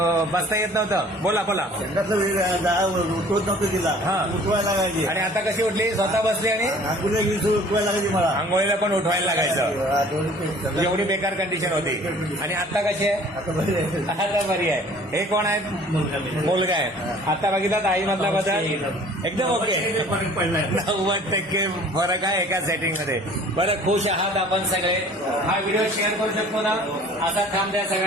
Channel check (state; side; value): normal; both; correlation 0.51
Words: बसता येत नव्हतं. बोला उठवत नव्हतं तिला उठवायला लागायची. आणि आता कशी उठली स्वतः बसली आणि आंघोळीला 20 उठवायला लागायची मला आंघोळीला पण उठवायला लागायचं. एवढी बेकार कंडिशन होती. आणि आता कशी आहे आता बरी आहे. हे कोण आहेत मुलगा आहे. आता बघितलं आई मधला बदल एकदम ओके. 90% फरक आहे एका सेटिंग मध्ये. बरं खुश आहात आपण सगळे. हा व्हिडिओ शेअर करू शकतो ना. असा थांब द्या